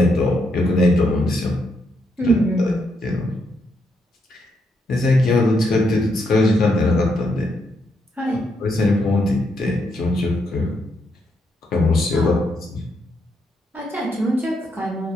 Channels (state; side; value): normal; both; correlation 0.78